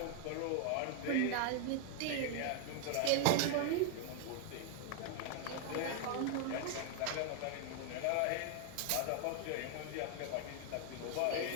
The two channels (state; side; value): different; both; correlation 0.00